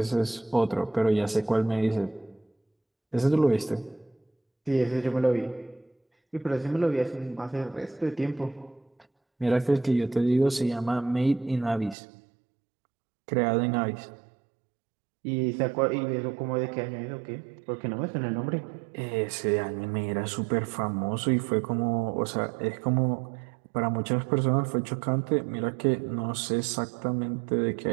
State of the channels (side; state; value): left; drops out; at 12.0 s